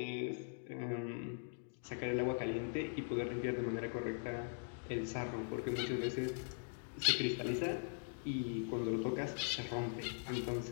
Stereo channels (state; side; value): silent; right; digital silence